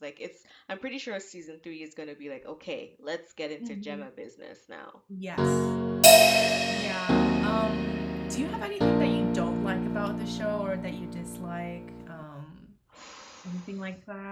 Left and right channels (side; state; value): both; identical; correlation 1.00